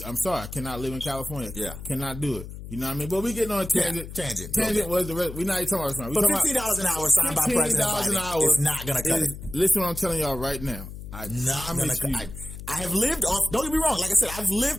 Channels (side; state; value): left; noise; hum, 11 dB below the sound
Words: sorry. I cannot live in California. Yeah. Cannot do it. You know what I mean? But we getting on a tangent. Yeah, Tangent was the rest. We're not even talking about this. But $15 an hour signed by President Biden is not going to cut it. Listen what I'm telling y'all right now. I have lived off, don't get me wrong, like I said, I've